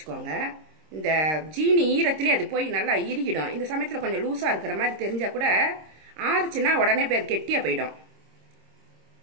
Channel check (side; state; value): left; late; 26 ms